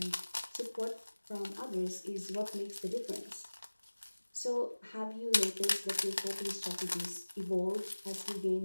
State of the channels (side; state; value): both; inverted; correlation -1.00